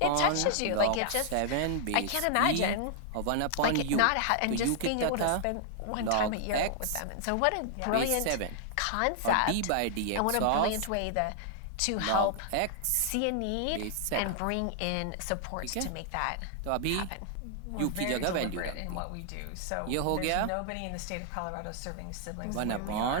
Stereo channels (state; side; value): different; both; correlation 0.00